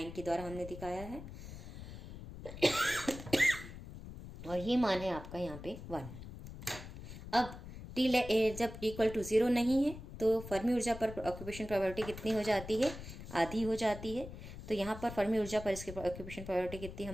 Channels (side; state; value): left; noise; rumble, 12 dB below the sound